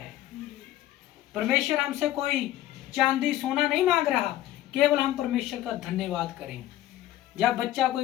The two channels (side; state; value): right; quieter; 13.9 dB